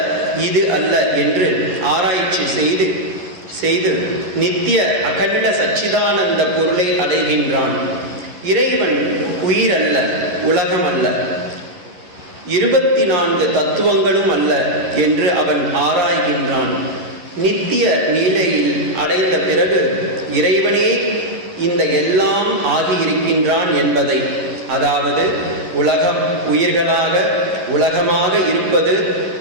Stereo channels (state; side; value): late; left; 11 ms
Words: இது அல்ல என்று ஆராய்ச்சி செய்து நித்திய அகண்ட சச்சிதானந்த பொருளை அடைகின்றான். இறைவன் உயிர் அல்ல, உலகம் அல்ல, 24 தத்துவங்களும் அல்ல என்று அவன் ஆராய்கின்றான். நித்திய நீலையில் அடைந்த பிறகு இறைவனே இந்த எல்லாம் ஆகியிருக்கின்றான் என்பதை, அதாவது உலகம் உயிர்களாக உலகமாக இருப்பது